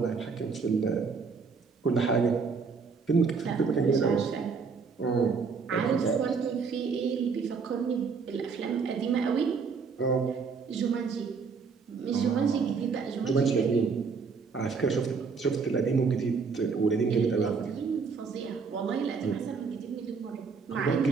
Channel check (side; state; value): left; quieter; 5.2 dB